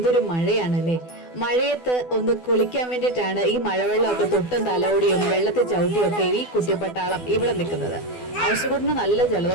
മഴയാണല്ലേ. മഴയത്ത് ഒന്ന് കുളിക്കാൻ വേണ്ടിയിട്ടാണ് ഈ മഴവെള്ളമൊക്കെ തൊട്ടും തലോടിയും വെള്ളത്തിൽ ചവിട്ടിയും ഒക്കെ ഈ കുട്ടിപ്പട്ടാളം ഇവിടെ നിൽക്കുന്നത്. ഔഷകുട്ടിന് നല്ല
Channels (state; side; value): late; right; 12 ms